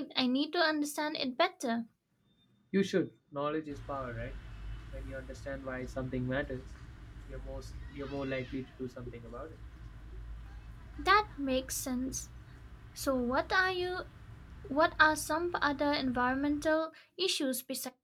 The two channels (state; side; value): identical; both; correlation 1.00